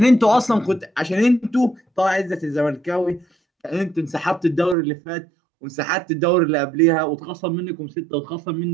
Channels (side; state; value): left; drops out; at 4.8 s